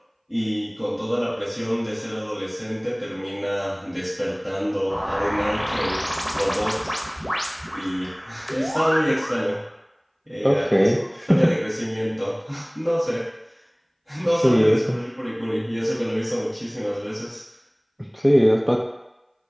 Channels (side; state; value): both; identical; correlation 1.00